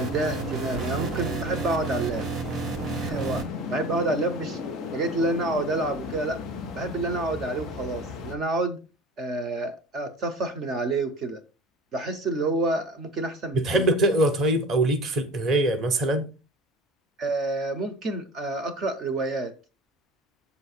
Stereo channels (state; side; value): normal; both; correlation 0.39